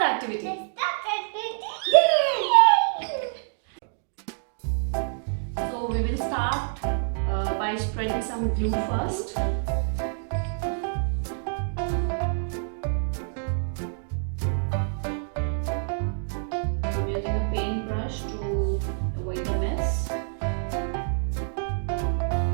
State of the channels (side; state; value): left; silent; digital silence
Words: activity. So we will start by spreading some glue first. I'm using a paintbrush to avoid the mess.